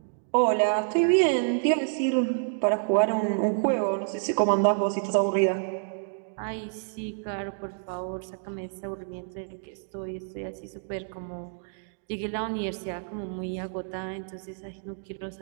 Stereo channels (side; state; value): left; silent; digital silence